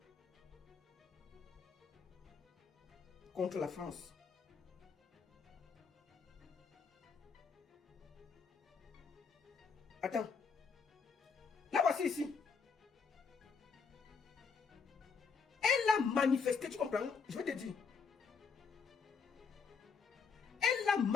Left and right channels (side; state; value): right; quieter; 5.6 dB